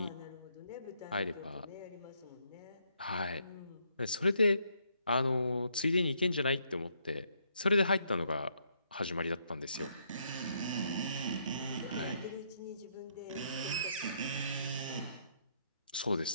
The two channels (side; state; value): both; inverted; correlation -0.73